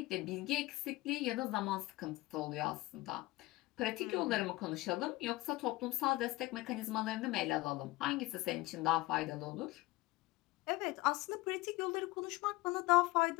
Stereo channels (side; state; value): right; quieter; 19.9 dB